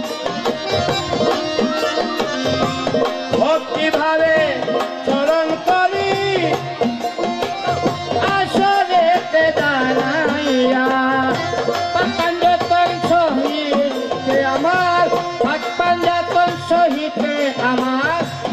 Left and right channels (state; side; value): identical; both; correlation 1.00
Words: ভক্তিভাবে স্মরণ করি আসলে দাঁড়াইয়া পাঞ্জাতন সহিতে আমার পাঞ্জাতন সহিতে আমার